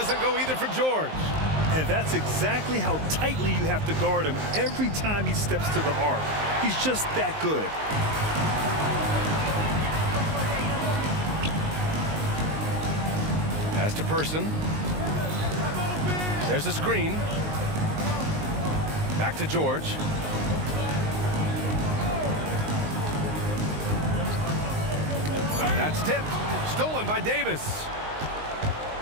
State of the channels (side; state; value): left; late; 19 ms